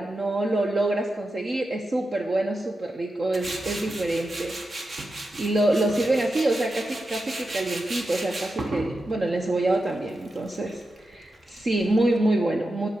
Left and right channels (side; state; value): both; normal; correlation 0.89